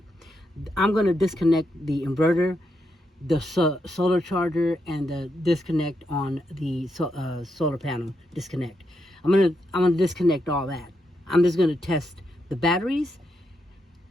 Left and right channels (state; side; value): normal; both; correlation 0.82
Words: I'm going to disconnect the inverter, the solar charger, and the disconnect on the solar panel disconnect. I'm gonna disconnect all that. I'm just going to test the batteries,